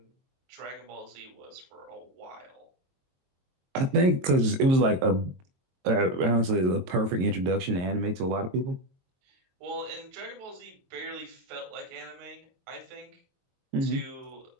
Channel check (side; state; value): left; late; 22 ms